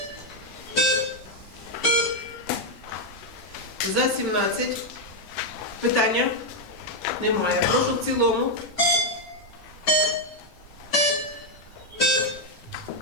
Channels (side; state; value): both; normal; correlation 0.01